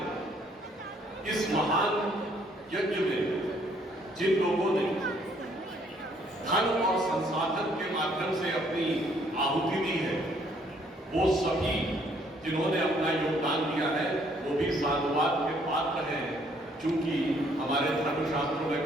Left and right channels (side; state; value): both; normal; correlation 0.65